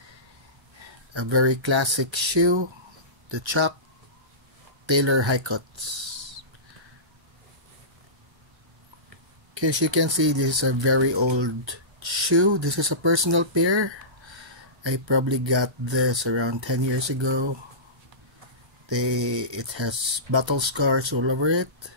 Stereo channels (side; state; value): left; late; 1.3 ms